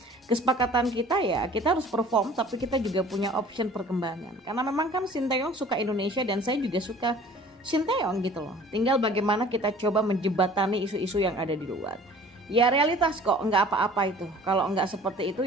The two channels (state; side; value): normal; both; correlation 0.48